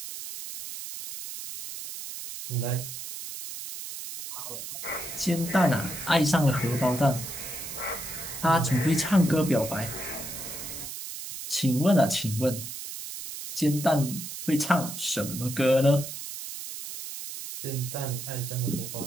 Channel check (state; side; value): noise; right; hiss, 9 dB below the sound